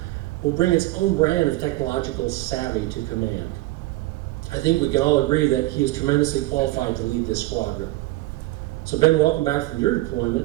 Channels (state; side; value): quieter; left; 18.9 dB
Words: will bring its own brand of technological savvy to command. I think we can all agree that he is tremendously qualified to lead this squadron. So Ben, welcome back from your